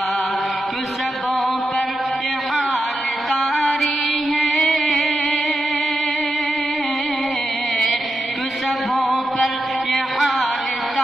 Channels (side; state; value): both; normal; correlation 0.88